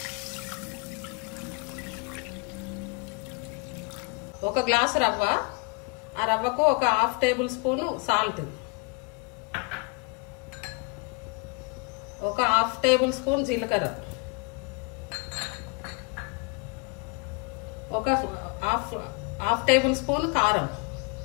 ఒక గ్లాసు రవ్వ, ఆ రవ్వకు ఒక 1/2 టేబుల్ స్పూన్ సాల్ట్, ఒక 1/2 టేబుల్ స్పూన్ జీలకర్ర, ఒక హాఫ్ టేబుల్ స్పూన్ కారం,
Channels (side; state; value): right; quieter; 31.3 dB